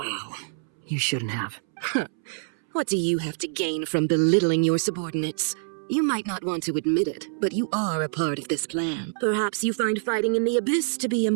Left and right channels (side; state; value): left; silent; 61 dB below the other